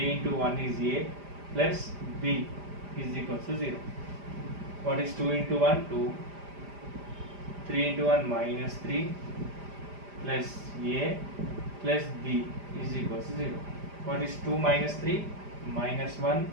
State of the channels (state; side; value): late; left; 5.0 ms